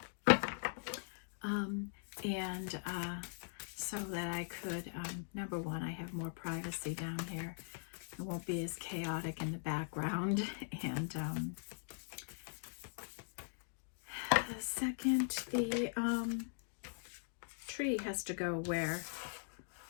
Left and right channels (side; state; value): right; silent; digital silence